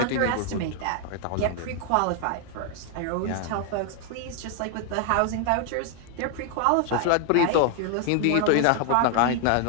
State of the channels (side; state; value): both; different; correlation 0.00